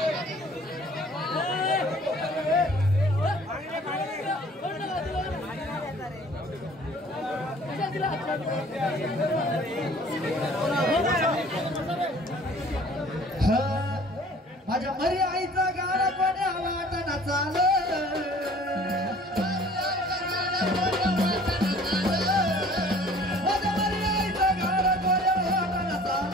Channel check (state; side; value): normal; both; correlation 0.51